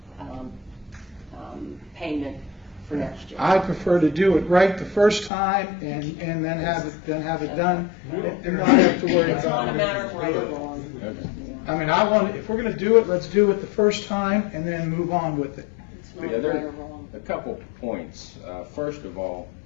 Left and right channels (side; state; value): right; drops out; at 5.3 s